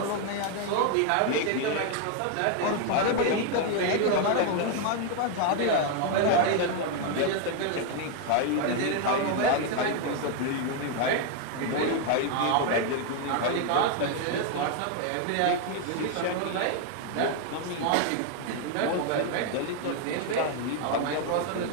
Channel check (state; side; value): different; both; correlation 0.00